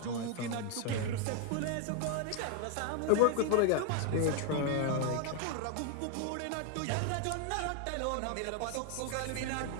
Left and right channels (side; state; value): both; different; correlation 0.01